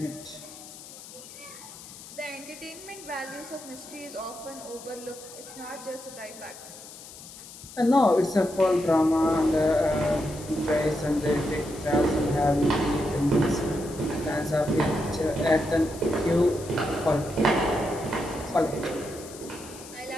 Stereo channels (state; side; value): noise; left; hiss, 16 dB below the sound